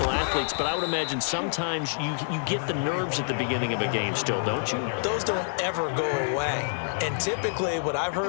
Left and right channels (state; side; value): silent; right; 60 dB below the other